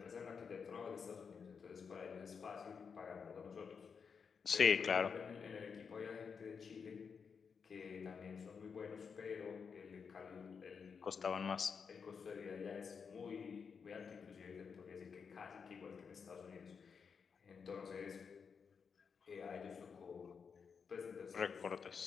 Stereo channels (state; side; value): quieter; right; 6.0 dB